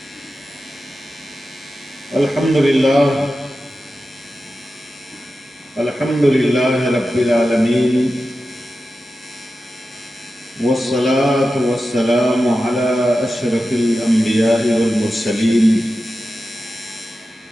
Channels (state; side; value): normal; both; correlation 0.92